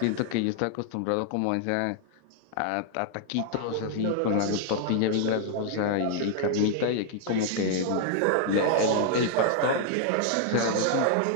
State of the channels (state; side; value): different; both; correlation 0.00